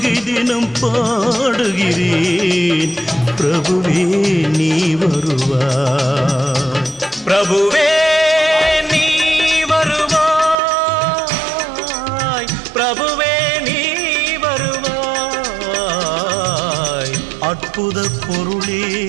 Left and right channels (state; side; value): drops out; left; at 10.6 s